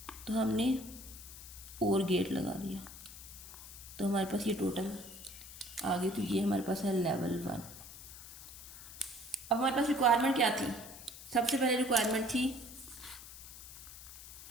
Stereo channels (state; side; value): noise; left; hiss, 14 dB below the sound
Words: तो हमने और गेट लगा दिया। तो हमारे पास ये टोटल आ गई। तो ये हमारे पास है लेवल 1। अब हमारे पास रिक्वायरमेंट क्या थी, सबसे पहले रिक्वायरमेंट थी